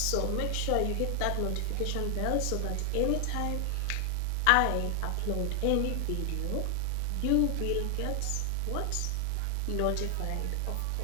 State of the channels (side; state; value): both; different; correlation 0.00